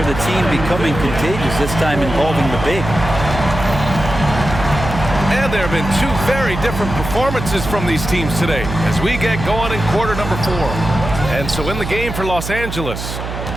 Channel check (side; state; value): right; noise; hum, 7 dB below the sound